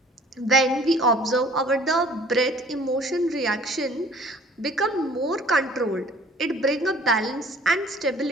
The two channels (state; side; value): normal; both; correlation 0.52